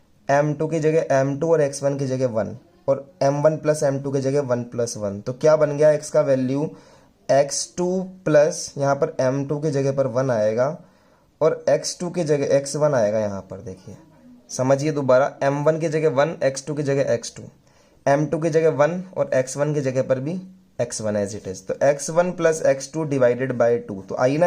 m2 की जगह m2 और x1 की जगह 1 और m1 प्लस m2 की जगह 1 प्लस 1। तो क्या बन गया, x का वैल्यू x2 प्लस यहाँ पर m2 की जगह पर 1 आएगा और x2 की जगह x1 आएगा। यहाँ पर देखिए समझिए दोबारा, m1 की जगह 1, x2 की जगह x2, m2 की जगह 1 और x1 की जगह पर भी x1 एज इट इज। तो x1 plus x2 divided by 2, तो आई ना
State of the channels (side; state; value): both; identical; correlation 1.00